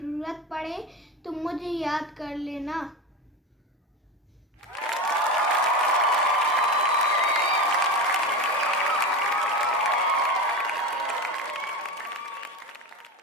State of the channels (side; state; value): both; normal; correlation 0.23